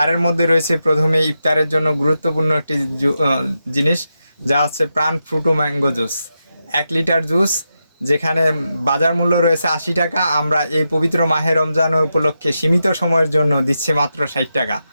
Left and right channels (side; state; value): both; inverted; correlation -0.87